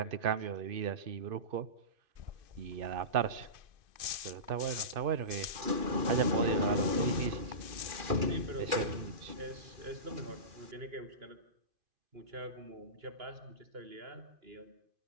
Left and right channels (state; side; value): late; left; 2.5 ms